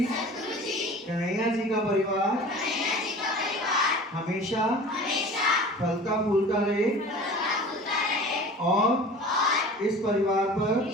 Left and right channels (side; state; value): both; normal; correlation 0.40